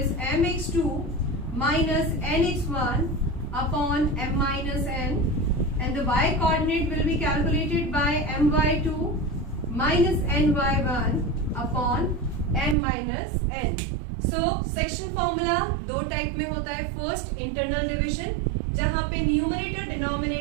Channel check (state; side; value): drops out; left; at 12.8 s